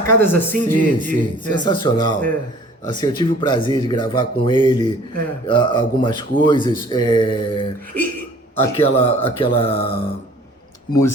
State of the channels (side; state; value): both; normal; correlation 0.52